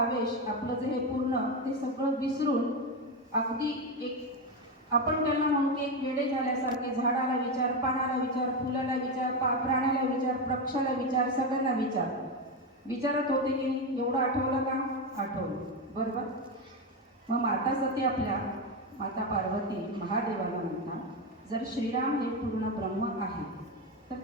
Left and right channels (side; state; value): both; normal; correlation 0.12